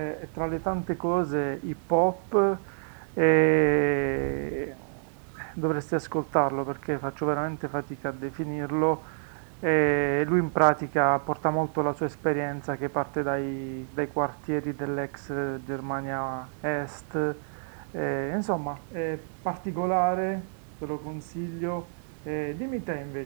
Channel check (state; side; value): silent; left; digital silence